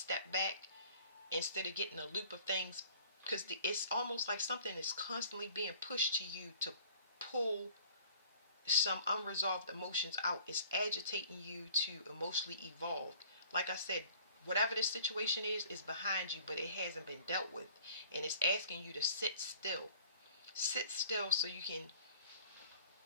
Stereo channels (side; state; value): both; inverted; correlation -0.50